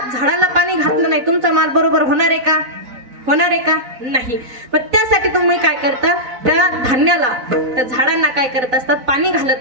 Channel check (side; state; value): left; late; 4.0 ms